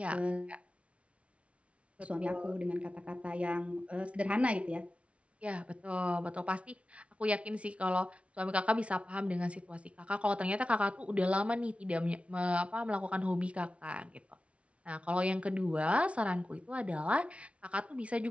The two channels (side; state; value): left; late; 0.062 ms